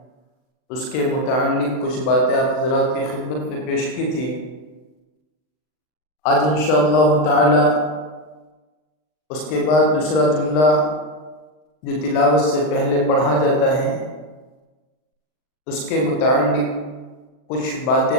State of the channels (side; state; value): right; late; 39 ms